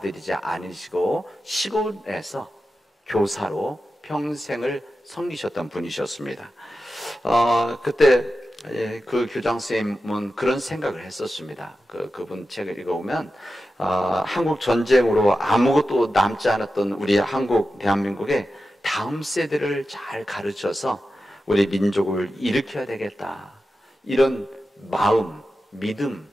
않으시고 시골에서 교사로 평생을 섬기셨던 분이셨습니다. 그때 그 교장 선생님은 그런 생각을 했었습니다. 그분 책을 읽어보면 한국 전쟁으로 아무것도 남지 않았던 우리 대한민국의 다음 세대를 잘 가르쳐서 우리 민족을 일으켜야 되겠다 이런 마음, 믿음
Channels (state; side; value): normal; both; correlation 0.92